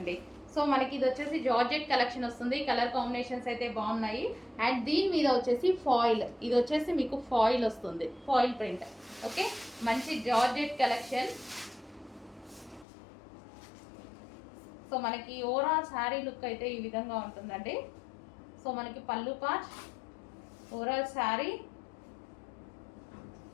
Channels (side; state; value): right; drops out; at 12.9 s